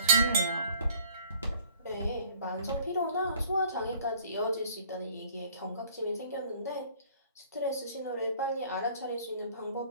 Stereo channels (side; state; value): both; inverted; correlation -0.53